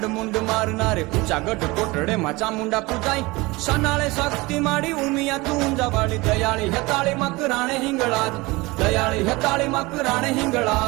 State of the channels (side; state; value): left; quieter; 22.8 dB